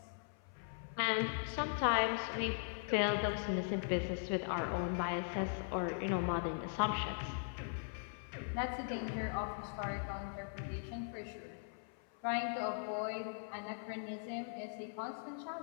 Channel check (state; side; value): silent; right; 51 dB below the other